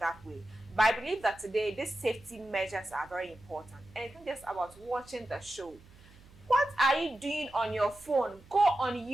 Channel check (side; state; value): right; noise; hum, 24 dB below the sound